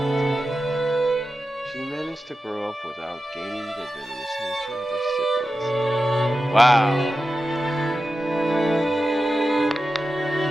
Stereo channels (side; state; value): both; normal; correlation 0.92